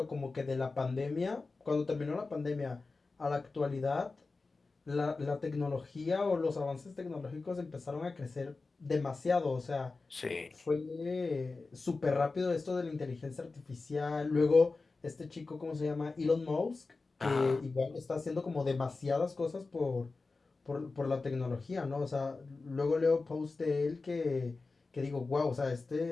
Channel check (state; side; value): quieter; right; 3.9 dB